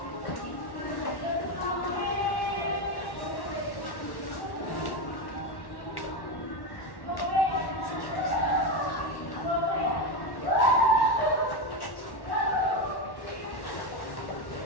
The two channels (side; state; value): right; late; 1.1 ms